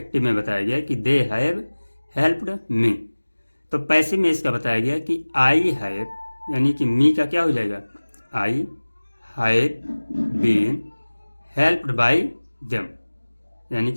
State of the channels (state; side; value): inverted; both; correlation -1.00